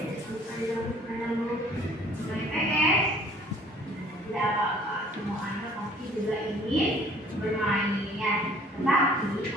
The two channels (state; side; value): normal; both; correlation 0.55